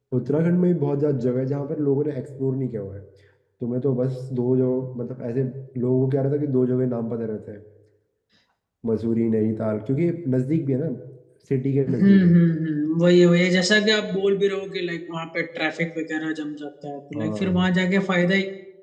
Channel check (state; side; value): identical; both; correlation 1.00